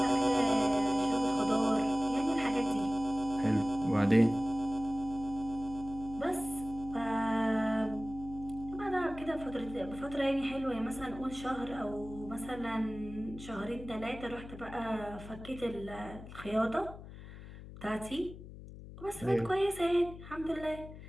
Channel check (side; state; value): left; noise; hum, 14 dB below the sound